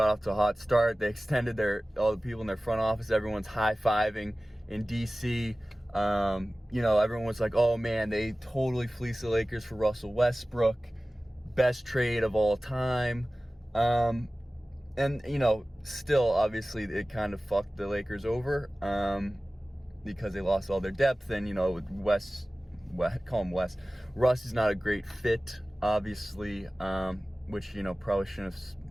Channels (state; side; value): normal; both; correlation 0.97